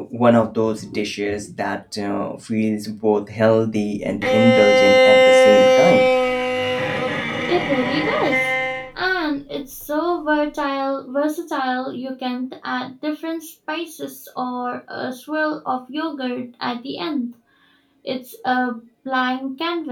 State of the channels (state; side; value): identical; both; correlation 1.00